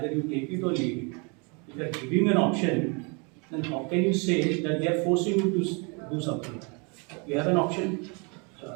you take it or leave it. If they are giving an option, then how can you say that they are forcing you to do something? You have an option. So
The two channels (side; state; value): left; quieter; 32.8 dB